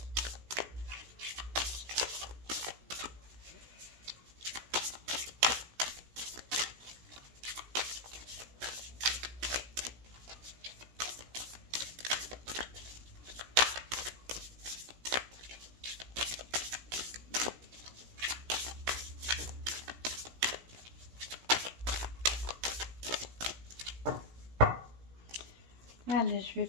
Allez, je vais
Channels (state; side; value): late; left; 17 ms